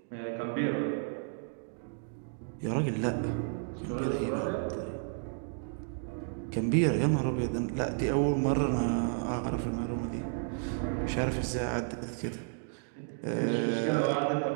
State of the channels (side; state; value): left; silent; digital silence